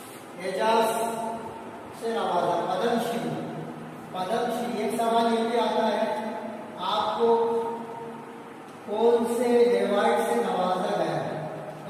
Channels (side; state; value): both; identical; correlation 1.00